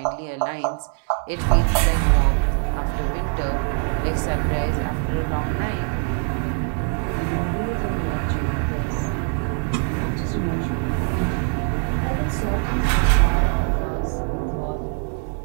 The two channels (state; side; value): quieter; left; 39.1 dB